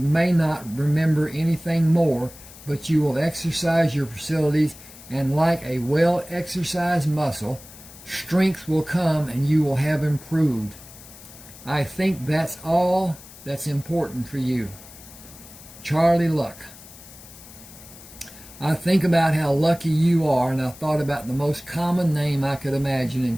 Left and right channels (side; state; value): left; noise; hiss, 19 dB below the sound